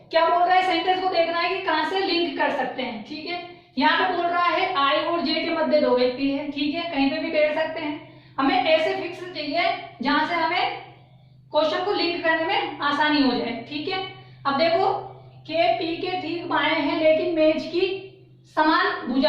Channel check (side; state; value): both; identical; correlation 1.00